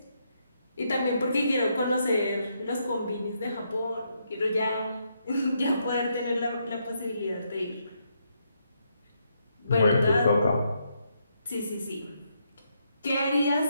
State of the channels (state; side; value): inverted; both; correlation -0.78